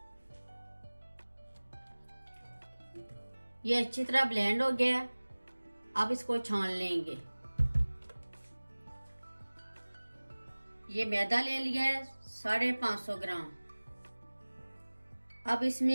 ये अच्छी तरह ब्लेंड हो गया। अब इसको छान लेंगे। ये मैदा ले लिया है 550 ग्राम। अब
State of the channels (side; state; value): both; inverted; correlation -1.00